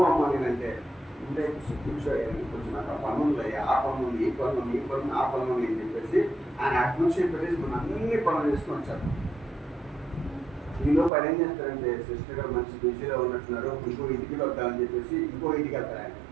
అమ్మ నేనంటే ఉంటే కూర్చోయాలి, కొంచెం నాకు ఆ పనులు ఆ పనులు ఈ పనులు ఆ పనులు అని చెప్పేసి ఆయన అటు నుంచి పెట్టేసి మనం అన్ని పనులు చేసుకొని వచ్చారు. ఈలో పని ఏం చేస్తారంటే, సిస్టర్ గారు మంచి బిజీలో ఉన్నట్టున్నారు, ఇంకో ఇంటికి వద్దామని చెప్పేసి ఇంకో ఇంటికి వెళ్తారు. ఆయన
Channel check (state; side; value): drops out; left; at 11.1 s